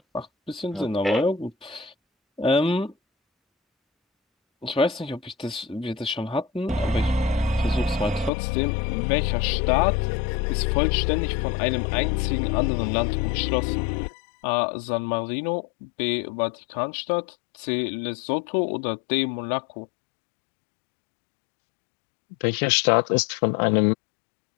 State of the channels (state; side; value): drops out; right; at 8.3 s